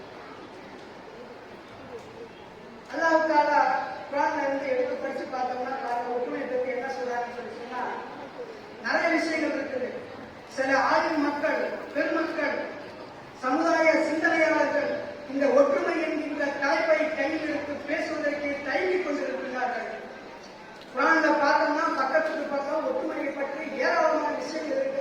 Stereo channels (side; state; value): both; identical; correlation 1.00